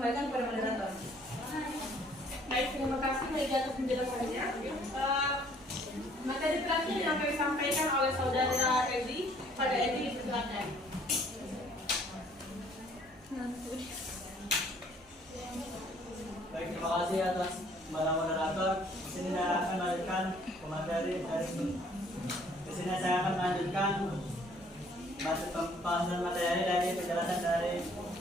kepada moderator. Baik, terima kasih Megi atas penjelasannya. Materi terakhir yang kami sampaikan oleh saudara Edi. Pada Edi, silakan. Baik, terima kasih atas para moderator. Di sini saya akan melanjutkan materi dari di sini saya akan melanjutkan pembahasan materi dari penjelasan dari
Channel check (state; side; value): normal; both; correlation 0.59